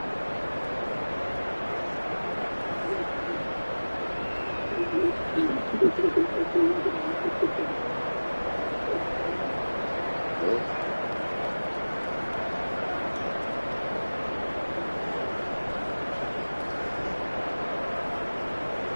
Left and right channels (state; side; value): inverted; both; correlation -1.00